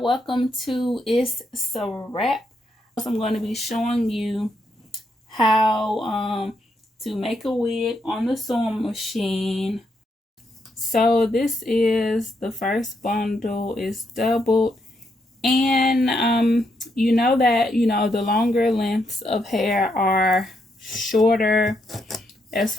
welcome to Itz Sirap. I'm going to be showing you how to make a wig on the sewing machine. So this is the first bundle. It's doubled, and you know that the longer lengths of hair are shorter as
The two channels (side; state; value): both; normal; correlation 0.78